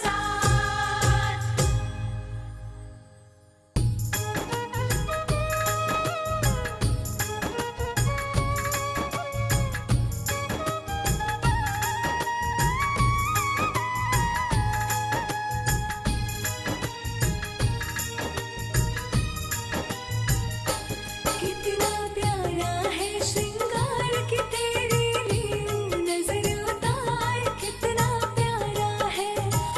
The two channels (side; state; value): both; identical; correlation 1.00